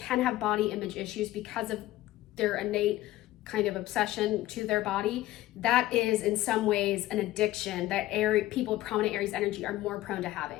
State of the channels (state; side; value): quieter; right; 15.9 dB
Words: have body image issues because of their innate kind of obsession to their body. That is in some ways an addiction that people with prominent Aries energy are more prone to